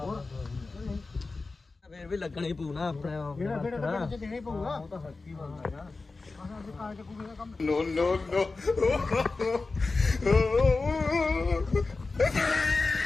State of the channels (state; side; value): quieter; right; 3.7 dB